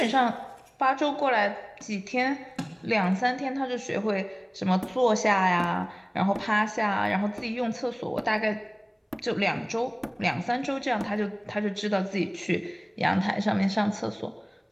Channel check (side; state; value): both; identical; correlation 1.00